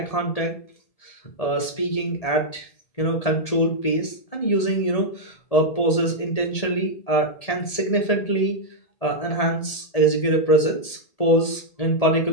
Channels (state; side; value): late; right; 1.8 ms